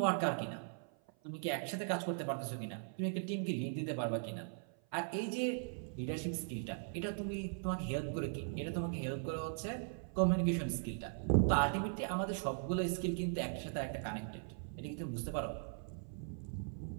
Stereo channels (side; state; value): left; silent; 52 dB below the other